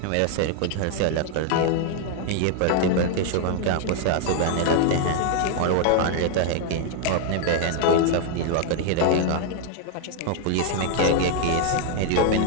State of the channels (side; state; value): both; different; correlation 0.00